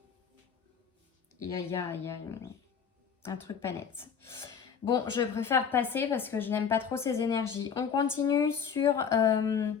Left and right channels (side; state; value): right; quieter; 7.0 dB